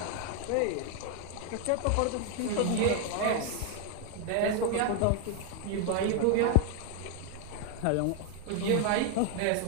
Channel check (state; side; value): different; both; correlation 0.00